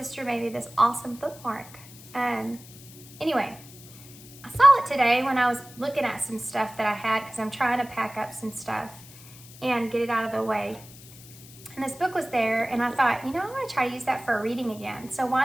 made me this awesome bookmark. Anyway, I saw it today when I was looking at some stuff that I had because I'm trying to pack up some stuff and get it out of the way. And this book was there, and I thought, I want to try to use that for a reading again. So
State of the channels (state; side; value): noise; left; hiss, 19 dB below the sound